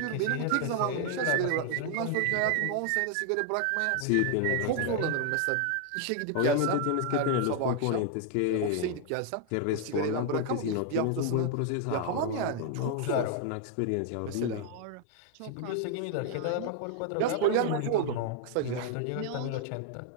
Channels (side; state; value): both; different; correlation 0.00